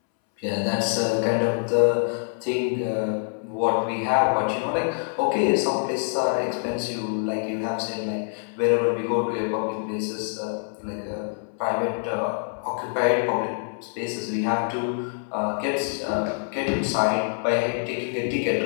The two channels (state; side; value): silent; right; 61 dB below the other